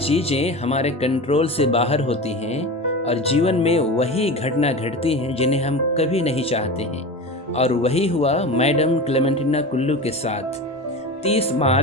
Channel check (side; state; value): both; normal; correlation 0.29